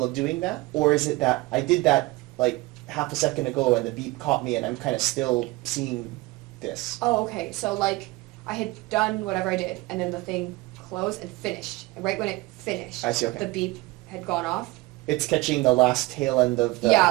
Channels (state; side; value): quieter; left; 21.2 dB